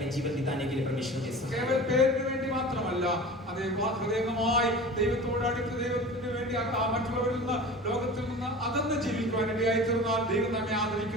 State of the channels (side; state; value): both; normal; correlation 0.36